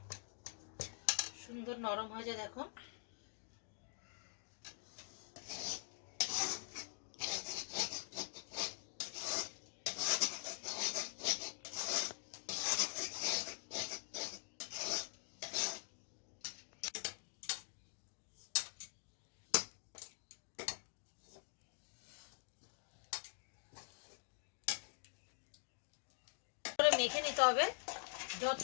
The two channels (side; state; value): right; silent; digital silence